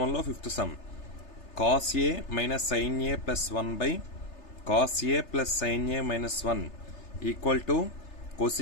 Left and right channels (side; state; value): right; late; 3.3 ms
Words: 5th sum cos a minus sin a plus 1 by cos a plus sin a minus 1 equal to